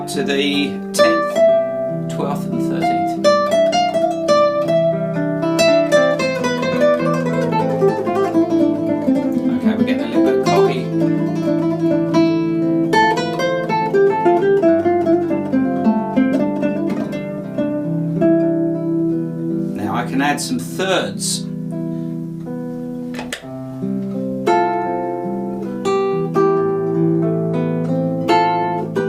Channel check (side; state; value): both; identical; correlation 1.00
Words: to the 10th, 12th and 13th. Okay, we're getting a little bit cocky. Now I can add some thirds.